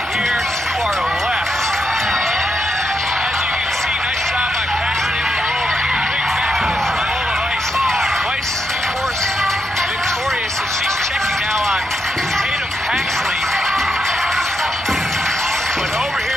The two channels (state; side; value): normal; both; correlation 0.82